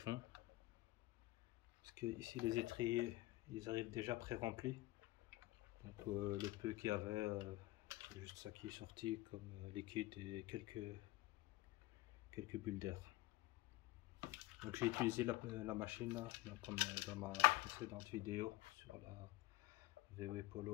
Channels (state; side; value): quieter; right; 18.5 dB